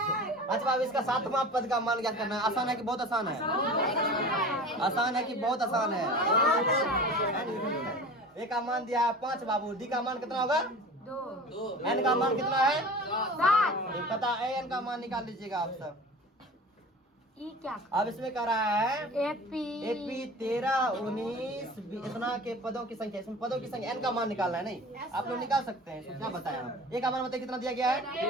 अच्छा अब इसका 7वां पद का मान क्या करना है? आसान है कि बहुत आसान है? आसान है कि बहुत आसान है? ए का मान दिया है 5 बाबू, डी का मान कितना होगा? 2। एन का मान कितना है? 7। पता है, एन का मान निकाल लीजिएगा आप सब। ई क्या? अब इसमें कह रहा है एपी 13 19 इतना के पदों की संख्या, इसमें पदों की संख्या एन का मान निकालना है। नहीं आप लोग निकाल सकते हैं, इसमें क्या बताया हम? ए का मान बताइए कितना दिया गया है?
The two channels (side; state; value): both; normal; correlation 0.38